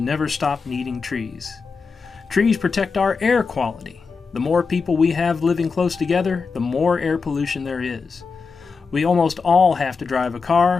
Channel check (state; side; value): quieter; right; 4.9 dB